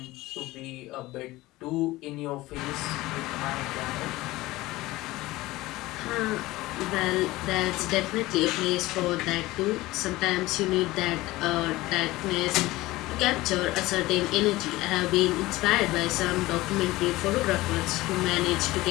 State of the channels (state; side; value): quieter; right; 18.8 dB